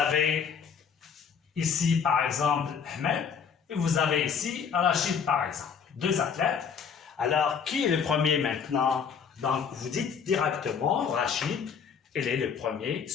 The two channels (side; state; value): right; quieter; 6.7 dB